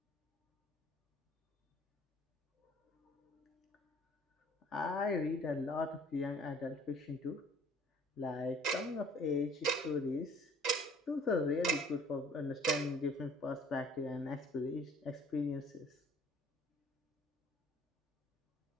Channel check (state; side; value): normal; both; correlation 0.55